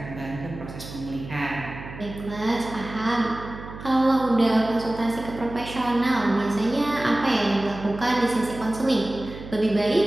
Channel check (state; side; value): noise; right; hum, 13 dB below the sound